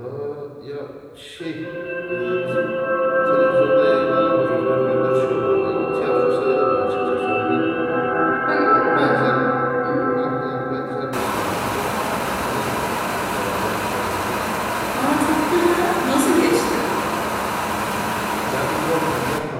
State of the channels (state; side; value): identical; both; correlation 1.00